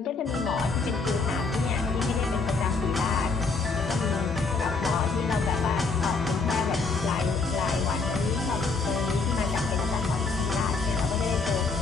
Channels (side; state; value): right; quieter; 4.2 dB